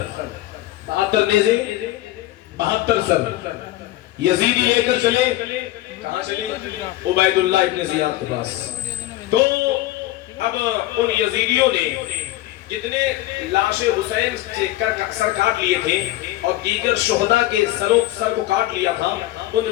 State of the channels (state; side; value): quieter; right; 16.0 dB